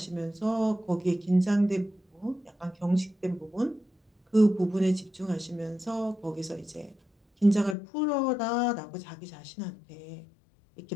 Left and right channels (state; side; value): drops out; right; at 7.8 s